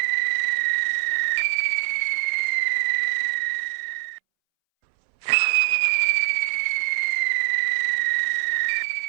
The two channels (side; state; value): left; silent; 63 dB below the other